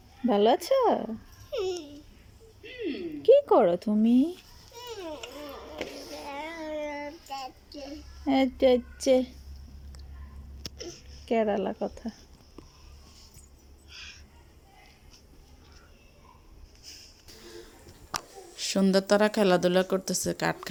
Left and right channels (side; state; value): both; identical; correlation 1.00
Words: ভালো আছো? কি করো তুমি? এই যে কেরালা কথা। সন্ধ্যা তারা খেলাধুলা করতেছে, কাঠ